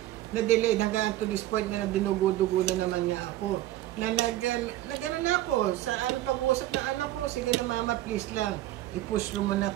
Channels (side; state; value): left; quieter; 14.9 dB